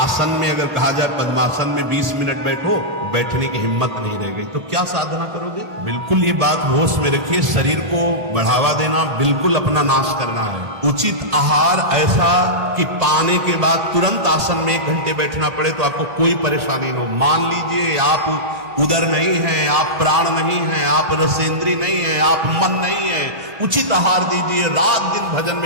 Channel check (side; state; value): left; late; 1.8 ms